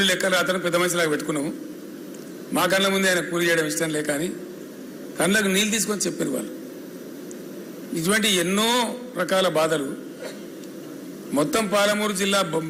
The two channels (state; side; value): identical; both; correlation 1.00